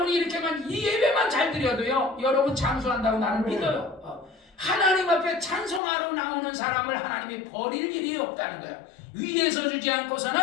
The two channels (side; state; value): right; drops out; at 5.8 s